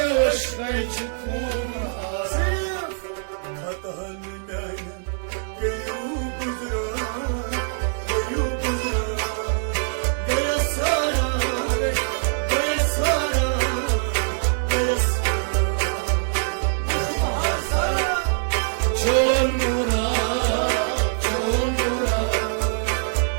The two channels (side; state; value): left; silent; digital silence